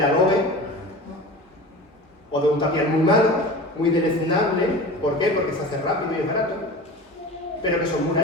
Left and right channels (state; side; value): normal; both; correlation 0.34